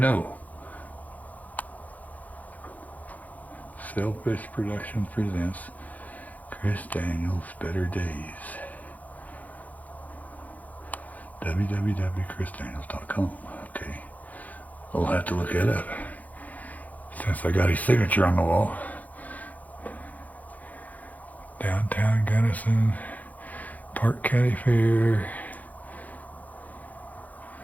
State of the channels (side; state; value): right; late; 0.078 ms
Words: Selfish Productions presents Chris Daniels Better Days. www.chrisdaniels.com. Okay. I'll have to look it up since I got his signature on the wall. Downtown Gunnison, Park County Fair.